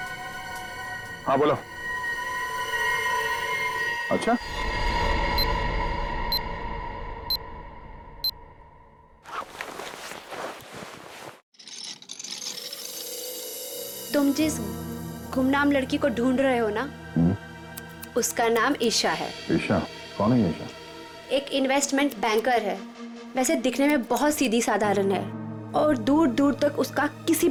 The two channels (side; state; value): both; identical; correlation 1.00